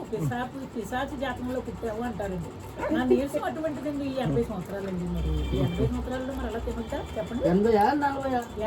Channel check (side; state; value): both; identical; correlation 1.00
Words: పిశాచి జాతకంలో పుట్టావు అంటారండి. నా నీరసం అటువంటిదండి. 80 సంవత్సరాలండి. మరి 80 సంవత్సరాల్లో మరి అలా తినొద్దా చెప్పండి? 80 40